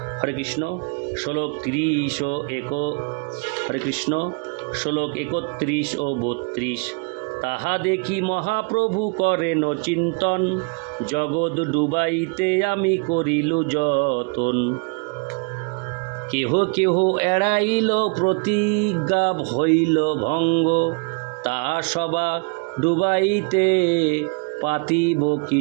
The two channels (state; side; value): quieter; left; 34.4 dB